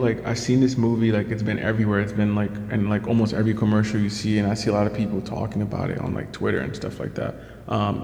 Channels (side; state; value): both; identical; correlation 1.00